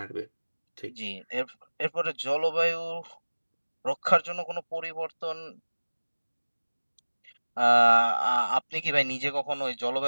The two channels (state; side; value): inverted; both; correlation -1.00